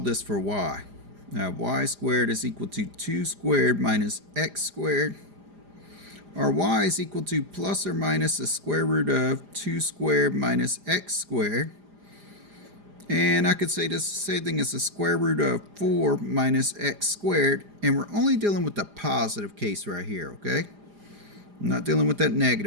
this for y? Now, y squared is equal to 2 squared minus x squared. Or y is equal to plus or minus the square root of 2 squared minus x squared. And I could say this same thing as the square root of 4 minus x squared. And we're only dealing with the positive case right here, okay? I'm not dealing with that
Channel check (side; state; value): left; late; 4.9 ms